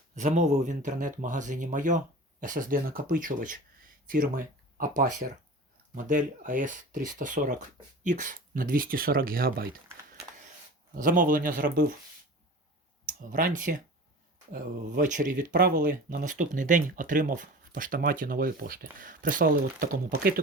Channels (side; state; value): both; normal; correlation 0.36